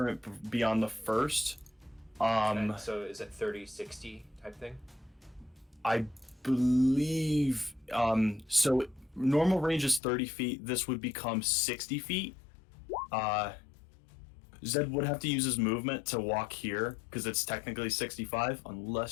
beyond the first. Okay, so is it 30-60 type thing? I believe... so normal range is 30 feet. This would become 60 feet. Zedd would have to use his movement to walk here, because it's technically 65,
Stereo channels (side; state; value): right; drops out; at 10.0 s